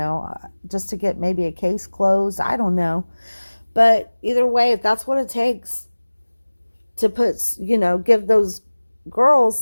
just to get maybe a case closed. I don't know. But either way, if that's what it takes to put, give those girls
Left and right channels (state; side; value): inverted; both; correlation -1.00